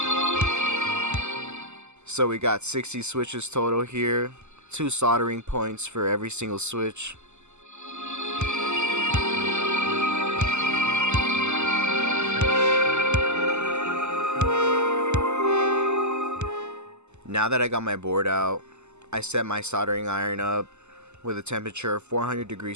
So we got 60 switches total here, 2 soldering points for every single switch. Now that I got my board out, I set my soldering iron up with a temperature of 400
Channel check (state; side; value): late; left; 0.83 ms